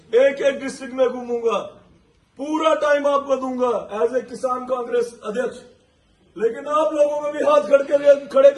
एक एक डिस्ट्रिक्ट में घूमूंगा, पूरा टाइम आपको दूंगा एज ए किसान कांग्रेस अध्यक्ष। लेकिन आप लोगों को भी हाथ खड़े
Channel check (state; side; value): identical; both; correlation 1.00